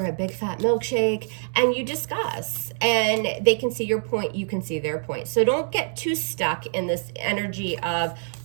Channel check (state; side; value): silent; left; 62 dB below the other